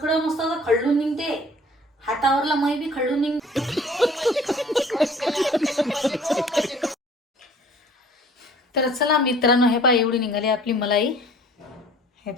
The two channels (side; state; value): both; normal; correlation 0.50